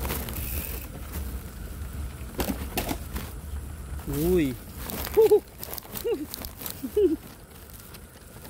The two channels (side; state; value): both; identical; correlation 1.00